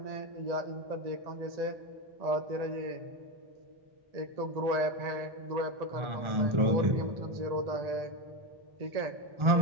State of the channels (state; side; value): late; left; 1.4 ms